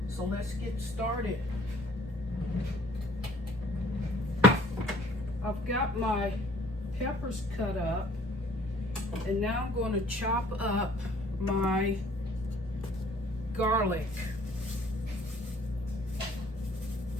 So let's get started. I've got my peppers cut up and now I'm going to chop up my garlic.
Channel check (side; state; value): both; normal; correlation 0.56